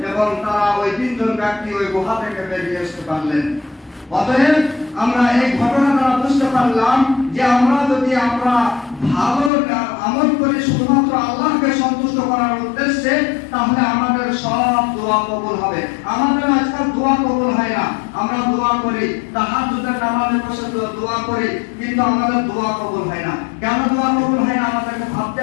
এবং তারা ওই 3 জন ব্যক্তি ওই গুহা থেকে বেরিয়ে আসতে পারলেন। অতএব আমরা এই ঘটনা দ্বারা বুঝতে পারলাম যে আমরা ভালো আমল করি শুধুমাত্র আল্লাহকে সন্তুষ্ট করার উদ্দেশ্যে, তাহলে আমাদের সব দোয়া কবুল হবে। আমাদের আজকাল দোয়া কবুল হয় না। আমরা দোয়া করি, তাহাজ্জুদের নামাজে বসে দোয়া করি, কিন্তু আমাদের দোয়া কবুল হয় না। কেন দোয়া কবুল হয় না আমাদেরকে ভাবতে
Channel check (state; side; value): drops out; right; at 9.5 s